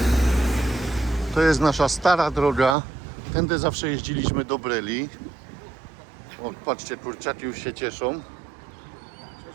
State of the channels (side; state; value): left; drops out; at 2.8 s